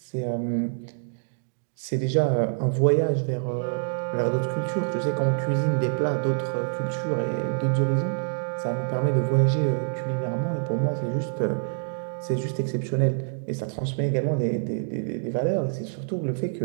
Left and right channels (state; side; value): silent; left; digital silence